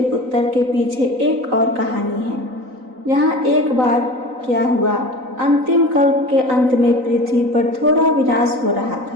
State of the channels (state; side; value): late; left; 3.9 ms